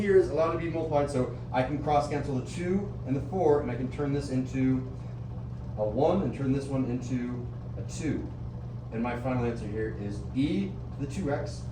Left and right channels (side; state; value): both; identical; correlation 1.00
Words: is allowed to be multiplied, so I can cross cancel the 2 and the 4, and I can turn this into a 1 and turn this one into a 2. And my final answer here is e to the 2x